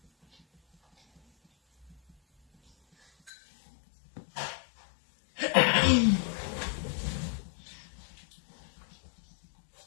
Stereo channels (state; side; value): drops out; right; at 3.3 s